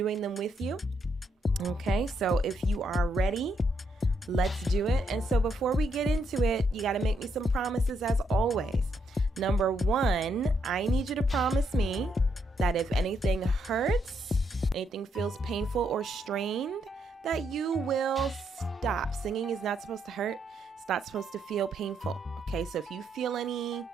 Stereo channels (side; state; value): both; normal; correlation 0.76